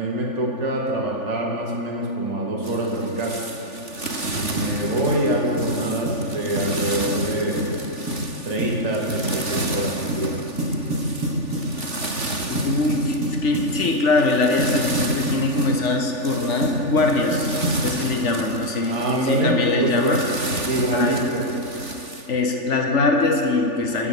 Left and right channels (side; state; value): right; late; 3.4 ms